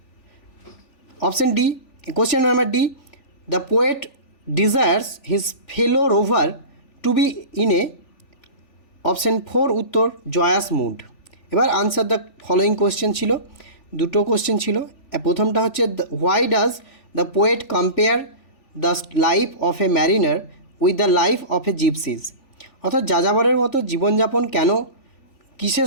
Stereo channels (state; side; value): late; right; 3.4 ms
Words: Option D question number D the poet desires his fellow rover to be in a, option 4 উত্তর joyous mood. এবার answer the following question ছিল, দুটো question ছিল। প্রথমটা হচ্ছে why does the poet compare the life of a mariner with the life of a gypsies, অর্থাৎ যাযাবরের মতো জীবনযাপন কেন কিসের